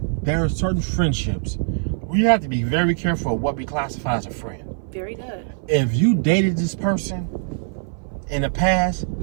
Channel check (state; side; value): silent; left; 58 dB below the other